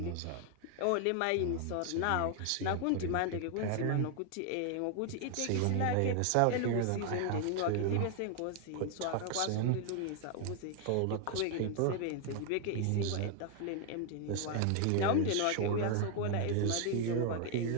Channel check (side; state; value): both; different; correlation 0.00